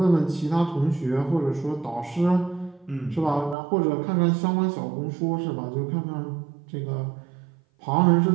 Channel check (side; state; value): left; drops out; at 3.6 s